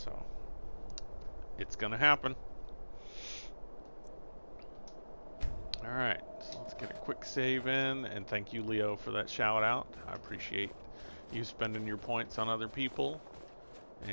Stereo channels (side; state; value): both; inverted; correlation -1.00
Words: it's gonna happen. Alright, so let's get a quick save in, and thank you, Leo, for that shout out. I appreciate you spending your points on other people,